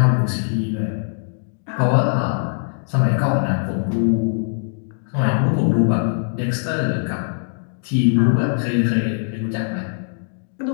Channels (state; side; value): silent; right; digital silence